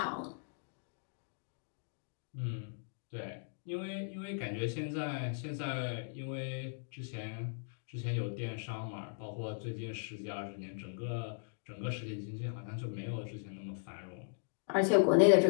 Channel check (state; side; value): silent; right; digital silence